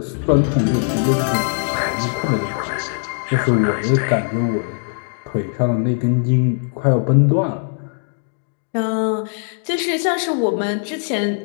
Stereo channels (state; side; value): silent; right; digital silence